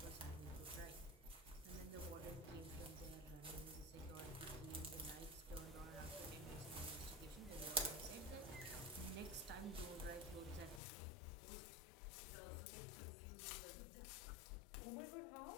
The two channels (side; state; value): right; drops out; at 10.8 s